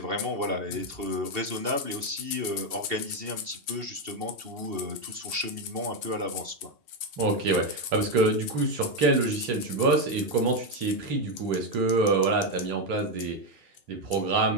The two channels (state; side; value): late; left; 2.7 ms